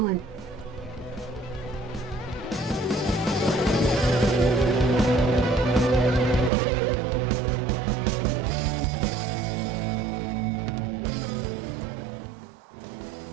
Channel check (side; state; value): left; drops out; at 6.5 s